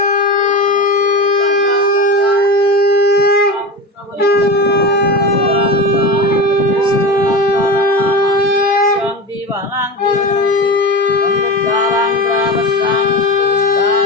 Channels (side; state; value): both; normal; correlation 0.25